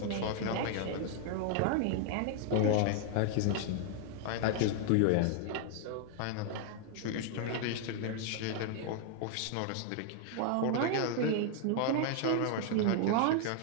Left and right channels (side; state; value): both; different; correlation 0.00